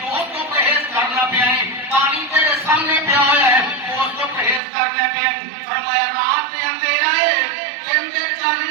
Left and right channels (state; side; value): drops out; left; at 4.6 s